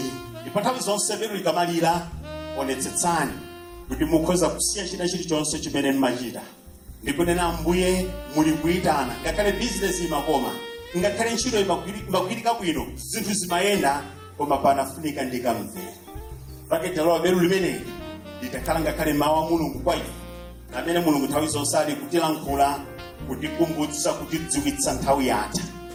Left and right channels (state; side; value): identical; both; correlation 1.00